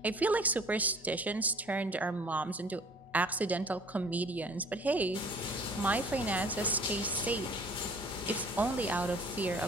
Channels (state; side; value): normal; both; correlation 0.51